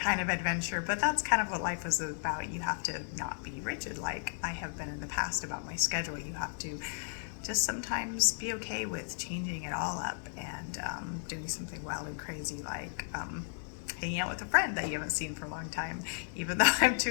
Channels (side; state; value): right; silent; digital silence